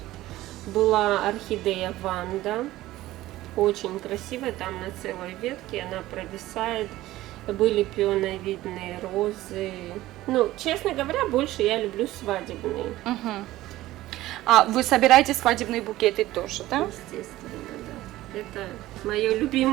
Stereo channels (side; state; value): left; quieter; 16.2 dB